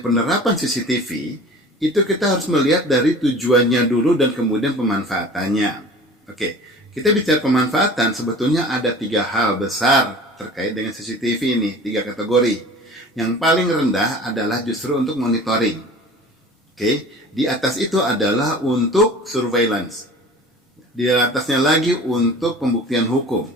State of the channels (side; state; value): both; normal; correlation 0.41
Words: CCTV itu kita harus melihat dari tujuannya dulu dan kemudian pemanfaatannya. Oke, kita bicara pemanfaatan sebetulnya ada 3 hal besar terkait dengan CCTV ini, 3 kategori. Yang paling rendah adalah justru untuk monitoring. Oke, di atas itu adalah untuk surveillance. Di atasnya lagi untuk pembuktian hukum.